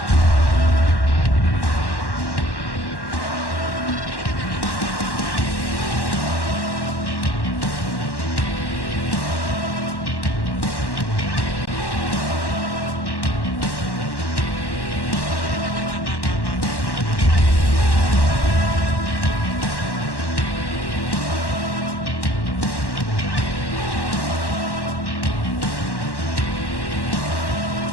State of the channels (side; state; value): right; late; 1.1 ms